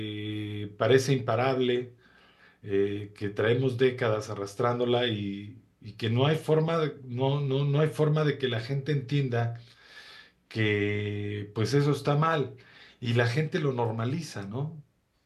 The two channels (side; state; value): both; identical; correlation 1.00